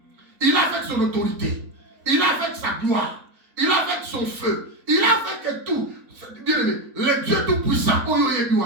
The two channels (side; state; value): left; late; 4.1 ms